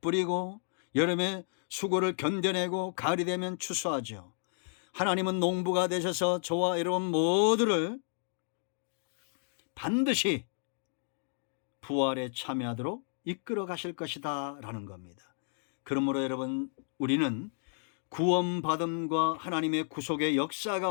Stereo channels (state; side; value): silent; right; digital silence